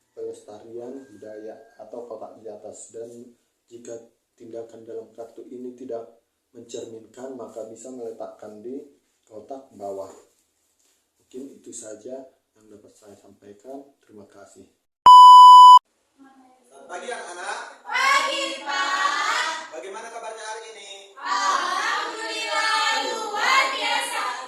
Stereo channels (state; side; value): identical; both; correlation 1.00